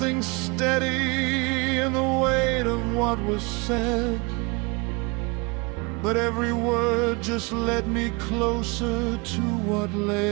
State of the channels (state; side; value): quieter; left; 28.0 dB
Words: steady in the weight of what was said, but every word just led me closer to what